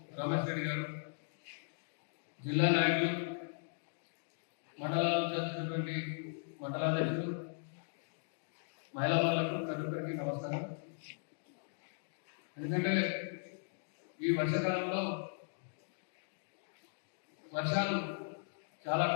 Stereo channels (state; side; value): silent; right; digital silence